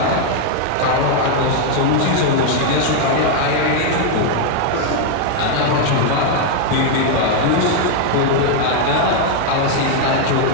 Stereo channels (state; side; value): different; both; correlation 0.00